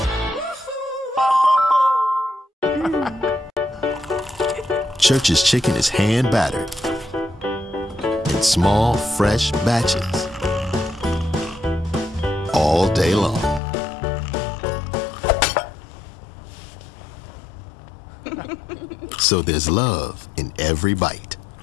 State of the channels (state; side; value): drops out; right; at 13.6 s